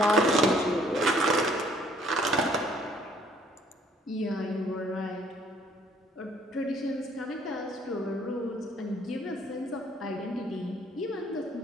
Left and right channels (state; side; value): normal; both; correlation 0.61